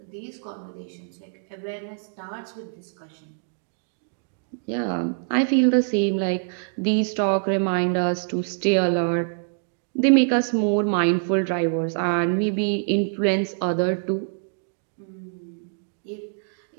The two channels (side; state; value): left; silent; digital silence